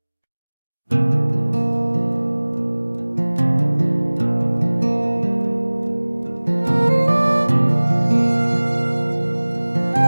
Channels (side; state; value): both; inverted; correlation -1.00